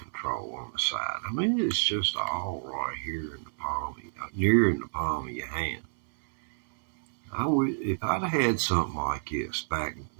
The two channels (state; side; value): silent; left; 58 dB below the other